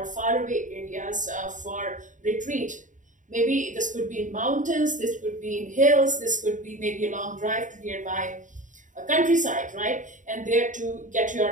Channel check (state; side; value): late; left; 0.37 ms